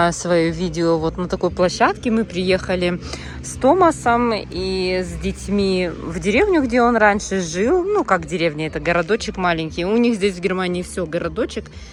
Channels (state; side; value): identical; both; correlation 1.00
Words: свое видео вот на такой площадке. Мы приехали с Томасом и с детьми в деревню, где он раньше жил. Ну, как деревня, это городочек маленький. У них здесь в Германии все городочек,